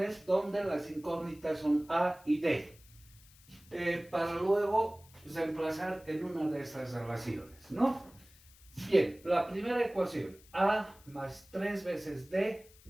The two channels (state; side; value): noise; left; hiss, 25 dB below the sound